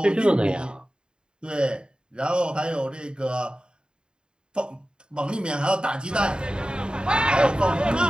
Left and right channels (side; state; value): left; late; 0.049 ms